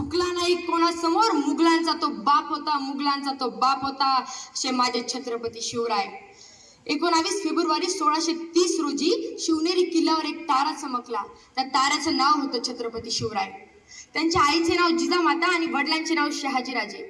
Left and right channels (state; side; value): identical; both; correlation 1.00